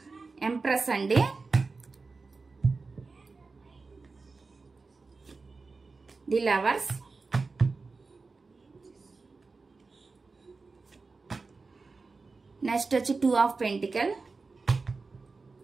ఎంప్రెస్ అండి, ది లవర్స్, నెక్స్ట్ వచ్చి 2 of pentacle,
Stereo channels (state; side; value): quieter; left; 4.1 dB